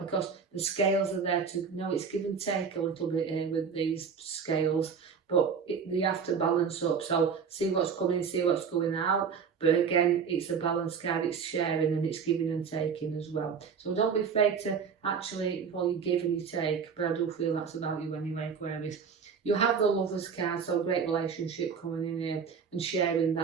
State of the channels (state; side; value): quieter; left; 6.2 dB